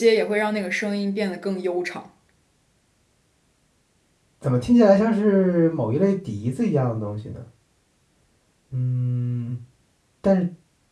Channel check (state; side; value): identical; both; correlation 1.00